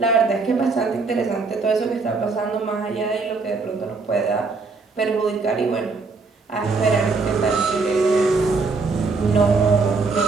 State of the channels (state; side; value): quieter; left; 4.2 dB